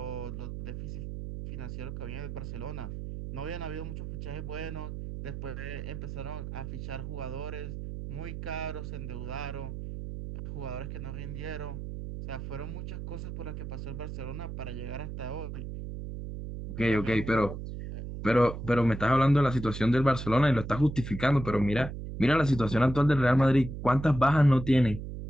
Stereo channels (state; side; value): noise; right; hum, 7 dB below the sound